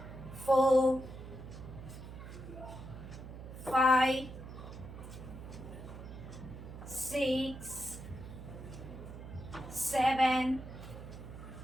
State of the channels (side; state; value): right; noise; hum, 12 dB below the sound